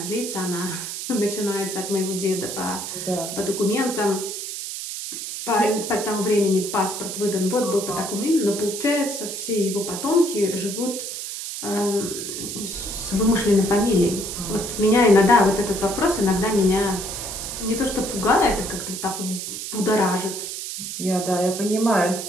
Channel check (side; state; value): right; noise; hiss, 6 dB below the sound